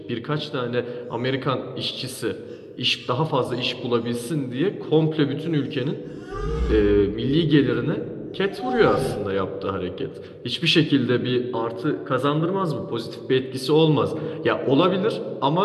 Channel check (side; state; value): both; identical; correlation 1.00